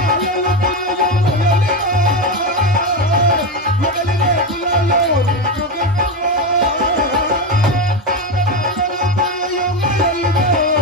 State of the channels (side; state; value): both; normal; correlation 0.14